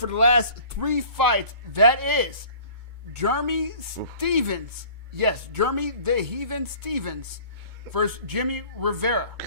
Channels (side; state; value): left; late; 2.2 ms